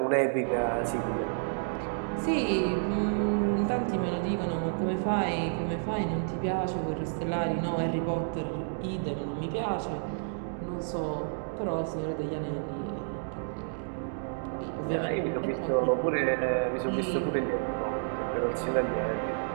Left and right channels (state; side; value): silent; left; digital silence